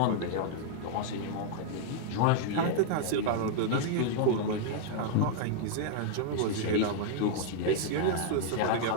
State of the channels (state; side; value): different; both; correlation -0.01